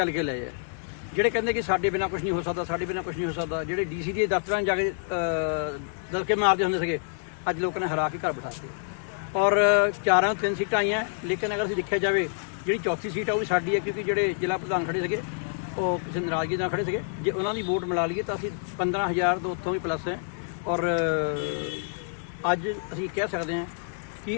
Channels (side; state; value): right; silent; digital silence